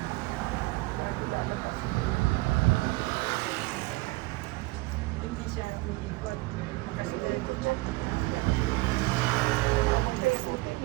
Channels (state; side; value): quieter; left; 22.4 dB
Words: Hindi siya umiikot. Kasi dahil siya.